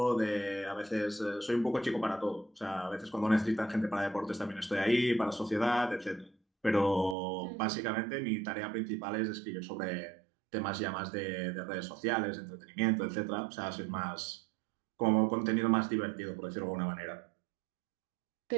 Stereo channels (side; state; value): left; drops out; at 7.2 s